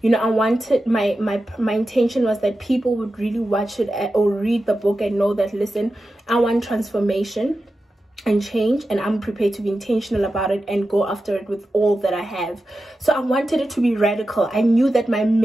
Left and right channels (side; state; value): both; normal; correlation 0.92